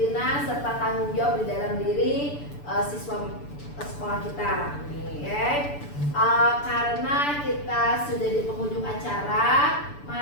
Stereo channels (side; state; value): right; late; 6.9 ms